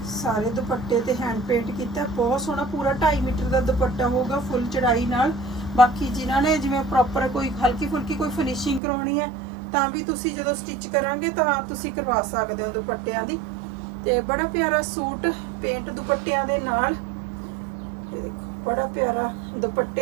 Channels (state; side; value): drops out; left; at 8.8 s